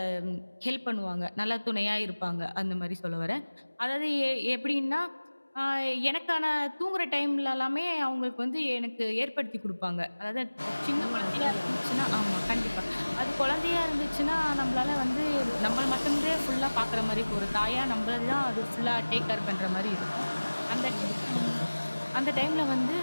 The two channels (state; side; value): inverted; both; correlation -1.00